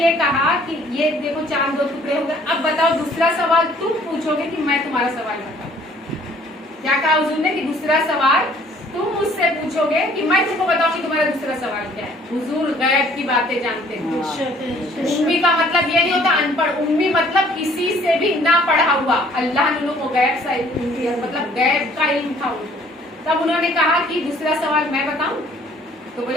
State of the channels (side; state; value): both; normal; correlation 0.58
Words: کہا کہ یہ دیکھو چاند 2 ٹکڑے ہو گئے, اب بتاؤ دوسرا سوال تم پوچھو گے کہ میں تمہارا سوال بتاؤں. کیا کہا حضور نے کہ دوسرا سوال تم مجھ سے پوچھو گے کہ میں تم کو بتاؤں کہ تمہارا دوسرا سوال کیا ہے. حضور غیب کی باتیں جانتے ہیں. امی کا مطلب یہ نہیں ہوتا ان پڑھ, امی مطلب کسی سے بھی نہ پڑھا ہوا. اللہ نے انہوں کو غیب سے مطلب غیب کا علم تھا ان کو. تب انہوں نے کہا کہ دوسرا سوال میں بتاؤں. تو